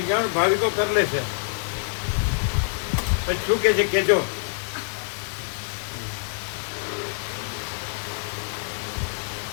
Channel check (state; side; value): silent; right; digital silence